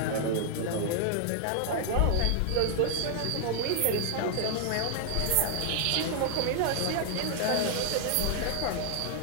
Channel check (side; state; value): both; different; correlation 0.00